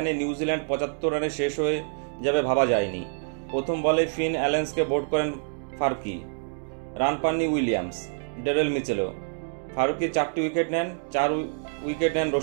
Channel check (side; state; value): left; silent; digital silence